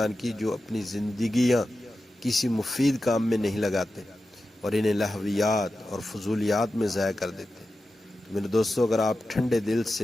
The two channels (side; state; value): both; normal; correlation 0.92